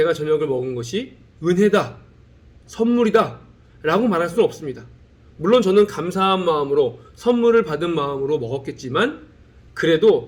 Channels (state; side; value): identical; both; correlation 1.00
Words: 저녁을 먹은 것이 은혜다, 선물이다 라고 말할 수는 없습니다. 물론 저는 감사한 마음으로 선물을 받은 마음으로 먹었겠지만